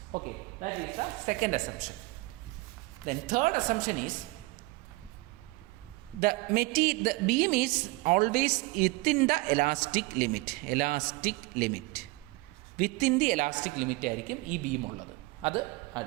Okay, that is the second assumption. Then third assumption is the beam is always within the elastic limit. Within the elastic limit ആയിരിക്കും ഈ beam ഉള്ളത്. അത്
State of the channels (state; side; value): quieter; left; 23.2 dB